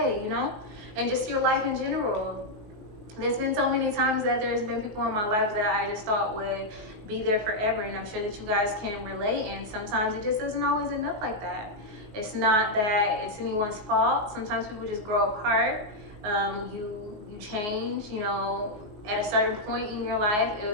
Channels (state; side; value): late; left; 19 ms